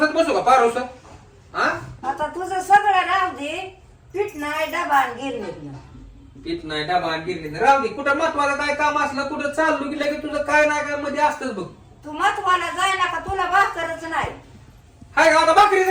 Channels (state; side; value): identical; both; correlation 1.00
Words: बसू का पारोस? हा आता तुझं सगळं राहू दे. पीठ नाही डबा आणि गिरणीत. पीठ नाही डबा गिरली राहू दे. कुठं महत्वाचं काय काम असलं कुठं चाललो की लगेच तुझं काय नाही काय मध्ये असतंच बघ. तू महत्वाला जाय ना का तुला भाकरच नाही. हाय का आता